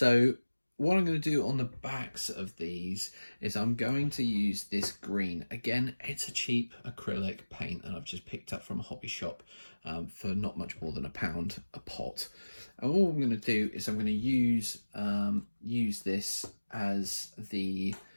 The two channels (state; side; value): inverted; both; correlation -1.00